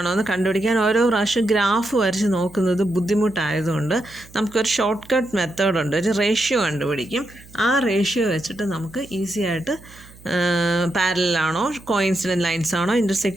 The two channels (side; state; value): right; noise; hum, 22 dB below the sound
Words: എന്ന് കണ്ടുപിടിക്കാൻ ഓരോ പ്രാവശ്യം ഗ്രാഫ് വരച്ച് നോക്കുന്നത് ബുദ്ധിമുട്ടായതുകൊണ്ട് നമുക്കൊരു ഷോർട്ട് കട്ട് മെത്തേഡുണ്ട്. ഒരു റേഷ്യോ കണ്ടുപിടിക്കും. ആ റേഷ്യോ വെച്ചിട്ട് നമുക്ക് ഈസി ആയിട്ട് പാരലാണോ കോയിൻസിഡൻറ്റ് ലൈൻസ് ആണോ